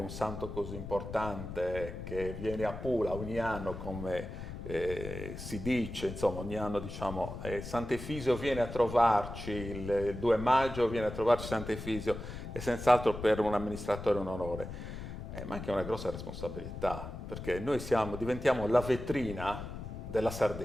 santo così importante che viene a Pula ogni anno come si dice, insomma, ogni anno diciamo Sant'Efisio viene a trovarci, il 2 maggio viene a trovarci Sant'Efisio, è senz'altro per un amministratore un onore, ma anche una grossa responsabilità, perché noi diventiamo la vetrina della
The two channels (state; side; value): noise; left; rumble, 9 dB below the sound